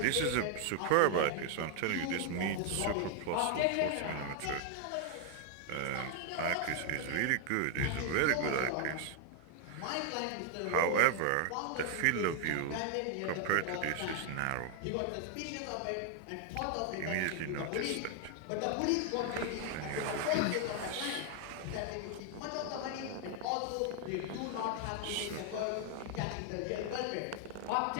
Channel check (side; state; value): both; different; correlation 0.00